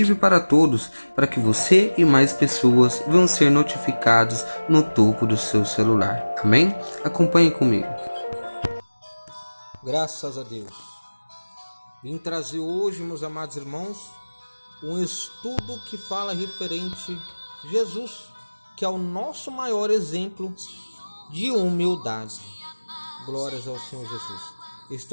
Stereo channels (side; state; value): both; inverted; correlation -1.00